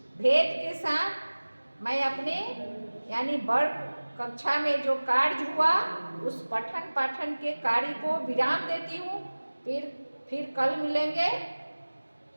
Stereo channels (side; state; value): both; inverted; correlation -1.00